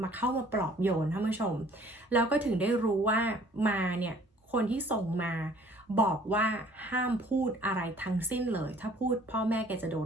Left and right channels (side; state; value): both; normal; correlation 0.55